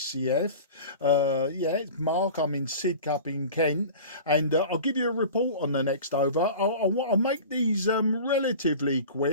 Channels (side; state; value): both; inverted; correlation -0.37